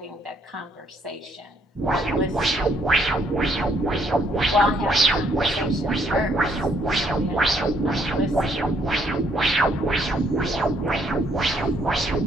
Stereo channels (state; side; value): normal; both; correlation 0.68